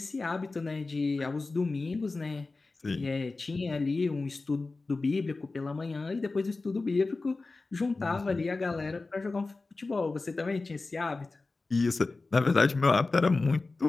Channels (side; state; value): right; quieter; 3.6 dB